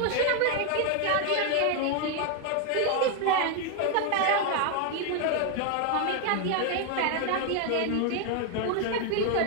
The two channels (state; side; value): different; both; correlation 0.01